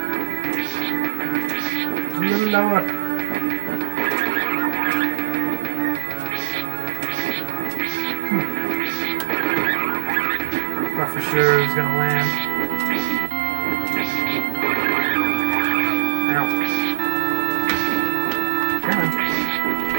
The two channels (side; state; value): left; silent; digital silence